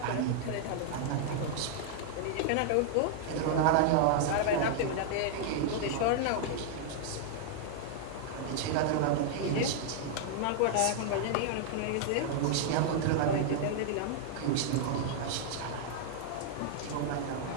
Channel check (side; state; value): both; different; correlation -0.01